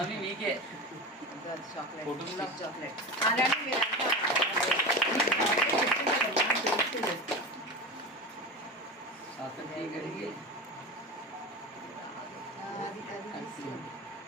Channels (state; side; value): normal; both; correlation 0.26